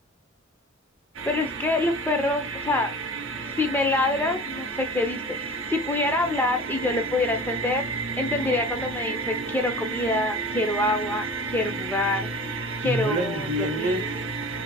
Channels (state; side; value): normal; both; correlation 0.39